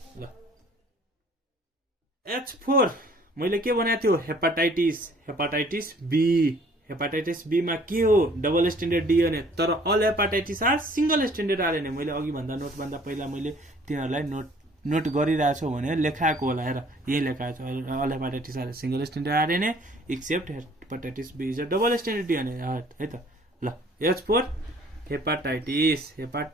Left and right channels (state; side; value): normal; both; correlation 0.56